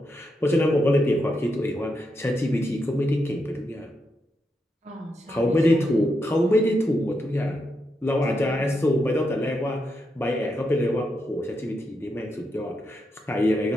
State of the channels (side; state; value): both; normal; correlation 0.83